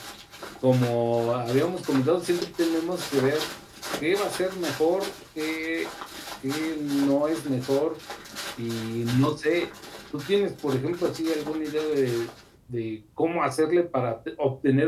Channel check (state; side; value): identical; both; correlation 1.00